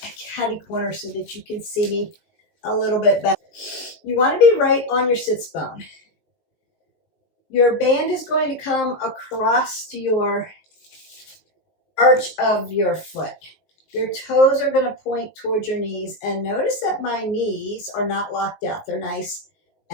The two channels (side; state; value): right; late; 19 ms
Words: a catty corner so that you can see me a little bit better. You want to be right on your sits bone. Your band is going to come across to your arch of your foot. Your toes are going to point towards your knees, and notice that my knees are not locked out. They're nice